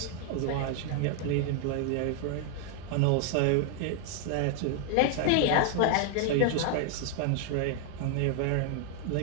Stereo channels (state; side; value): different; both; correlation 0.00